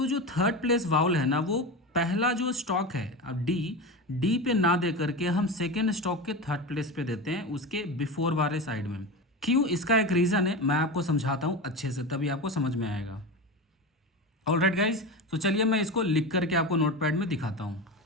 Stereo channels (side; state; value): both; normal; correlation 0.23